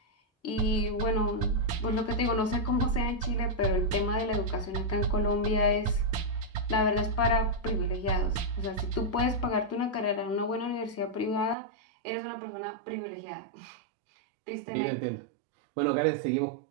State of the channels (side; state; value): left; drops out; at 11.6 s